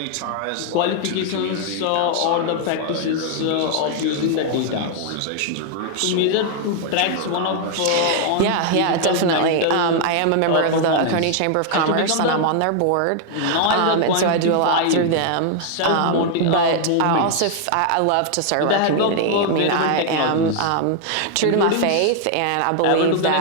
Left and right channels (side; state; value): both; different; correlation 0.00